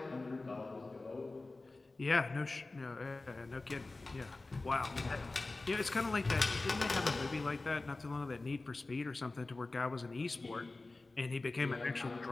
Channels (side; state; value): right; quieter; 3.3 dB